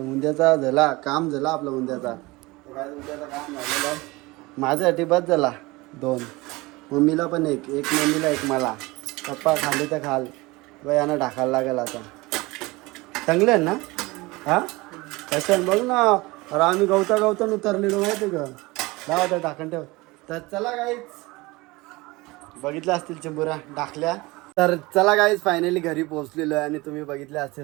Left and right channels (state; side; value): quieter; left; 22.4 dB